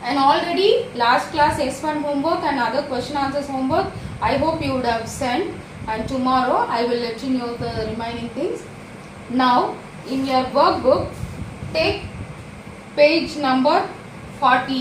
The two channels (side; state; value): both; identical; correlation 1.00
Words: And already last class S1 homework and other question answers homework, I hope you would have sent. And tomorrow I will let you know the remaining things. Now in your workbook, take page number